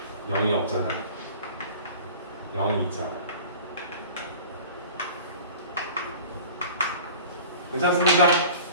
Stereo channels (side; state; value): both; inverted; correlation -0.42